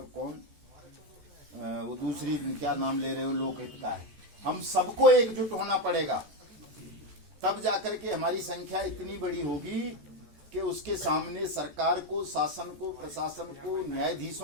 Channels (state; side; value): late; left; 14 ms